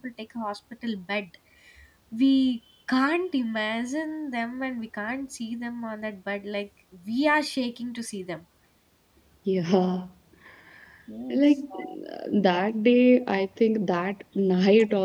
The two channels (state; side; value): identical; both; correlation 1.00